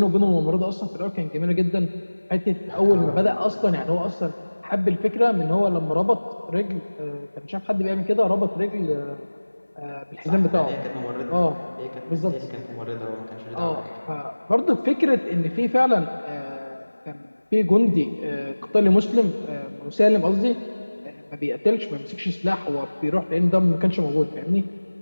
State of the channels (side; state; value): both; inverted; correlation -1.00